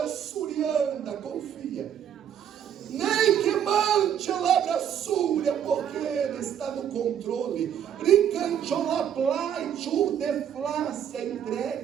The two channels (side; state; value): left; quieter; 9.2 dB